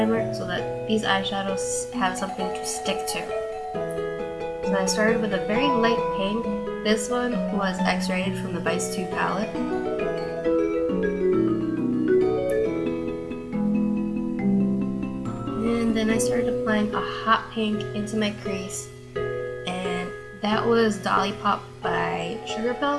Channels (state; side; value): identical; both; correlation 1.00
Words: so that these eyeshadows have something to stick to. So I started with a very light pink. This one was X-rated from the Vice 2 palette. And then I started applying a hot pink into my crease, and that was Dollipop by Sugar